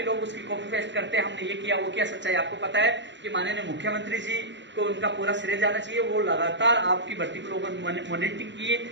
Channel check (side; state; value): left; late; 0.53 ms